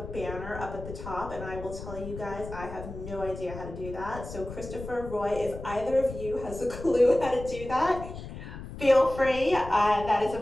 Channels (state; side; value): noise; left; rumble, 11 dB below the sound